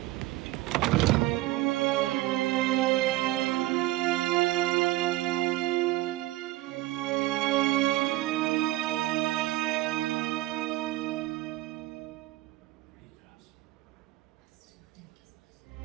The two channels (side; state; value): left; quieter; 17.8 dB